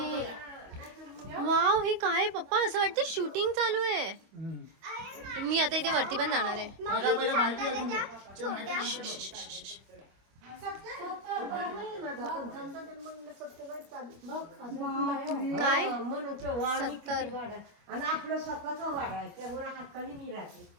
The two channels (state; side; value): late; left; 25 ms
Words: वाव, हे काय आहे पप्पा? असं वाटतं शूटिंग चालू आहे. मी आता इथे वरती पण जाणार आहे. काय 70 आणि आपलं स्वतःचा वाडा आहे त्यामुळे हक्काने मी राहते.